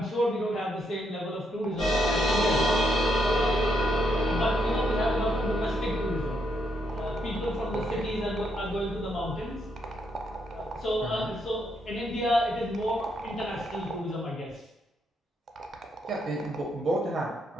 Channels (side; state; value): both; normal; correlation 0.77